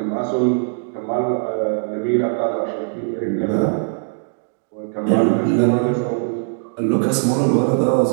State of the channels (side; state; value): left; silent; digital silence